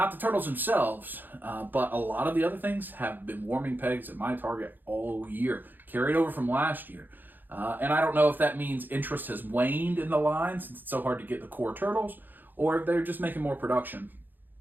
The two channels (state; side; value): late; left; 0.089 ms